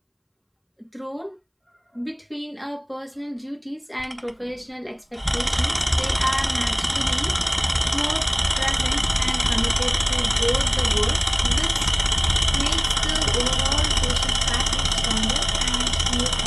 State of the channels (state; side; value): identical; both; correlation 1.00